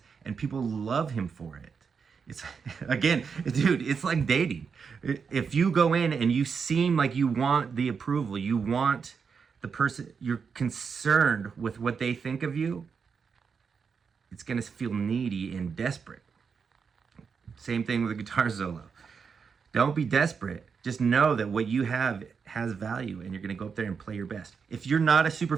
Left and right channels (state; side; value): quieter; left; 5.9 dB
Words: and people love him for it. It's again, dude, it's like dating. If you go in and you seem like you want the approval, you want the person, you're concerned with what they think of you, it's going to feel needy and desperate. Same thing with a guitar solo. Don't be desperate. Just know that what you have has value, and you're going to go up there and play your best. If you're not a super